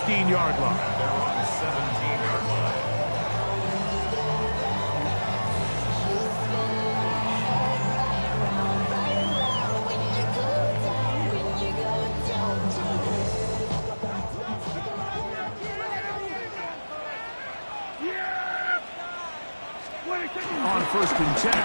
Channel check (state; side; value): inverted; both; correlation -1.00